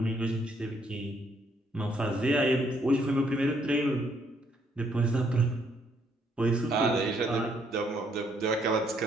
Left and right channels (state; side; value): normal; both; correlation 0.70